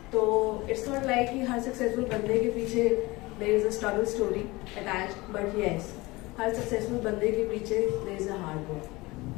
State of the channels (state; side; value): quieter; right; 22.0 dB